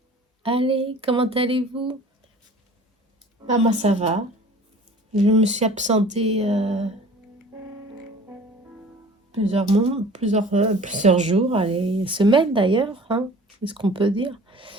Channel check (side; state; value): both; normal; correlation 0.45